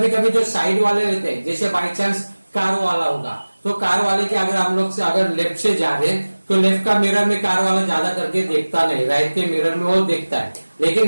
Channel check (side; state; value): both; inverted; correlation -1.00